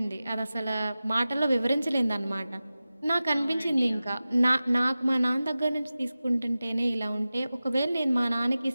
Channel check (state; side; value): inverted; both; correlation -0.95